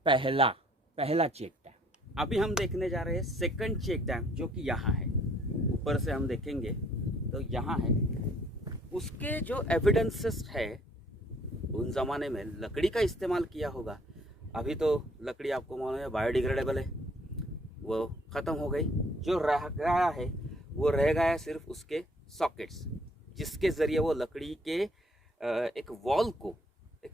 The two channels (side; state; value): both; normal; correlation 0.62